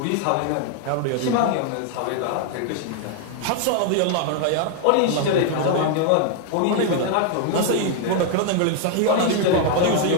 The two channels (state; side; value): different; both; correlation 0.00